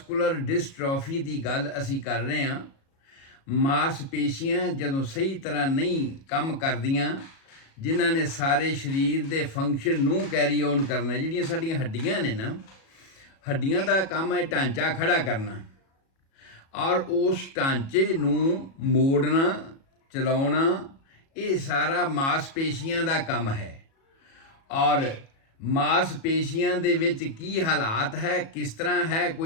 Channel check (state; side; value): late; right; 37 ms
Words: ਡਿਸਟ੍ਰੋਫੀ ਦੀ ਗੱਲ ਅਸੀਂ ਕਰ ਰਹੇ ਹਾਂ। ਮਾਸਪੇਸ਼ੀਆਂ ਜਦੋਂ ਸਹੀ ਤਰ੍ਹਾਂ ਨਹੀਂ ਕੰਮ ਕਰਦੀਆਂ, ਜਿਨ੍ਹਾਂ ਨੇ ਸਾਰੇ ਸਰੀਰ ਦੇ ਫੰਕਸ਼ਨ ਨੂੰ ਕੈਰੀ ਔਨ ਕਰਨਾ, ਜਿਹੜੀਆਂ ਸਾਡੀਆਂ ਹੱਡੀਆਂ ਨੇ ਨਾ, ਹੱਡੀਆਂ ਦਾ ਕੰਮ ਹੈ ਢਾਂਚਾ ਖੜਾ ਕਰਨਾ, ਔਰ ਉਸ ਢਾਂਚੇ ਨੂੰ ਮੋੜਨਾ, ਚਲਾਉਣਾ, ਇਹ ਸਾਰਾ ਮਾਸਪੇਸ਼ੀਆਂ ਦਾ ਕੰਮ ਹੈ। ਔਰ ਮਾਸਪੇਸ਼ੀਆਂ ਦੇ ਵਿੱਚ ਕੀ ਹਾਲਾਤ ਹੈ, ਕਿਸ ਤਰ੍ਹਾਂ ਹੈ,